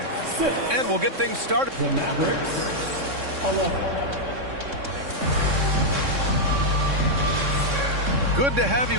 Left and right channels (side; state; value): left; late; 3.6 ms